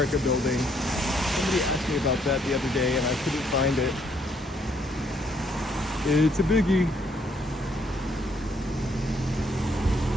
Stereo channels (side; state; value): both; normal; correlation 0.69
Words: building. Somebody asked me about that the other day and I couldn't find it. It's a biggie.